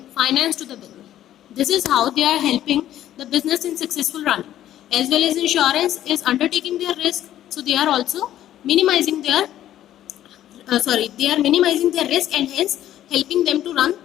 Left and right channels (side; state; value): right; quieter; 12.2 dB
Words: finance to the business. This is how they are helping the business in successful running. As well as insurance is undertaking their risk, so they are also minimizing their they are minimizing their risk and hence helping them to run